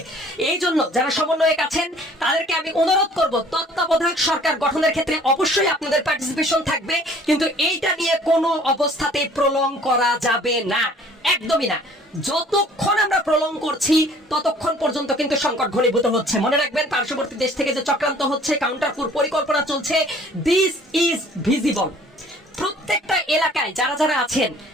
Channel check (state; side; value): normal; both; correlation 0.53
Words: এই জন্য যারা সমন্বয়ক আছেন তাদেরকে আমি অনুরোধ করব, তত্ত্বাবধায়ক সরকার গঠনের ক্ষেত্রে অবশ্যই আপনাদের পার্টিসিপেশন থাকবে, কিন্তু এইটা নিয়ে কোনো অবস্থাতেই প্রলং করা যাবে না, একদমই না। যতক্ষণ আমরা প্রলং করছি ততক্ষণ পর্যন্ত কিন্তু সংকট ঘনীভূত হচ্ছে। মনে রাখবেন পার্শ্ববর্তী দেশ থেকে যে চক্রান্ত হচ্ছে, কাউন্টারপুর পরিকল্পনা চলছে, দিস ইজ ভিজিবল। প্রত্যেকটা এলাকায় যারা যারা আছেন